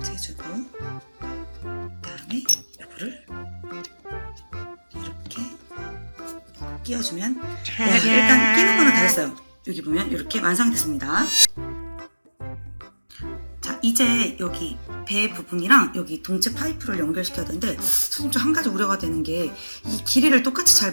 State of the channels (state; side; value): inverted; both; correlation -1.00